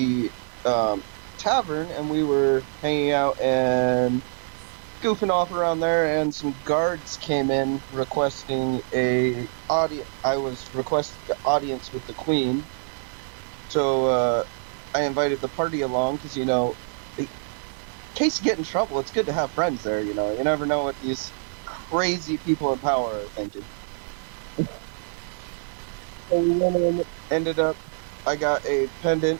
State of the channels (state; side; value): silent; left; digital silence